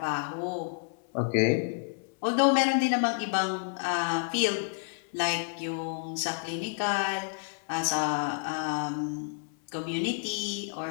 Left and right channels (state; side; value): silent; right; 55 dB below the other